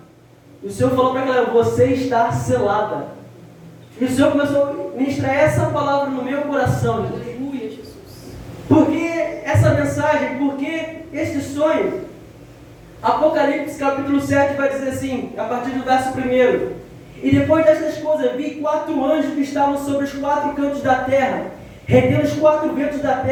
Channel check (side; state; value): both; identical; correlation 1.00